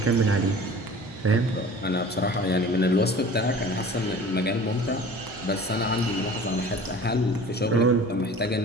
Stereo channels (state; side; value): normal; both; correlation 0.43